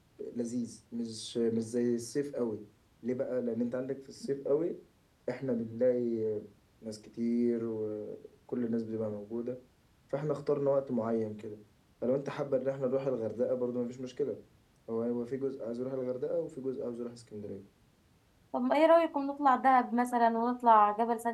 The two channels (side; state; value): both; identical; correlation 1.00